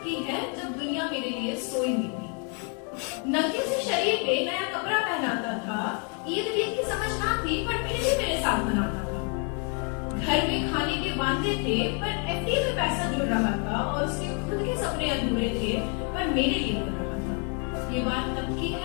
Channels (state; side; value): quieter; right; 38.8 dB